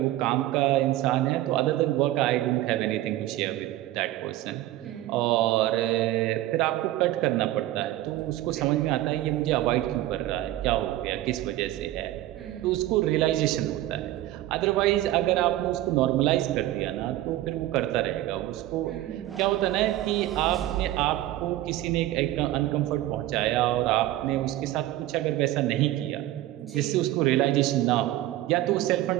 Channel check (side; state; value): left; quieter; 15.0 dB